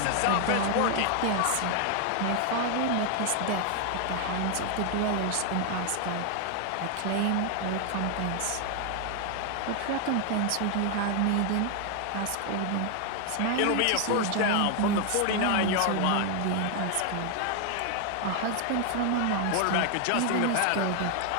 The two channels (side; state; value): both; different; correlation 0.00